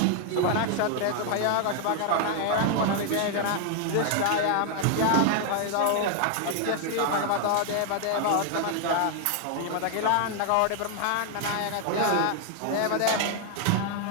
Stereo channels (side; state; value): both; different; correlation 0.00